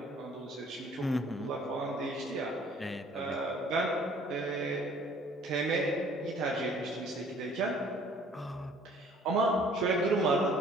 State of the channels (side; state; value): both; normal; correlation 0.56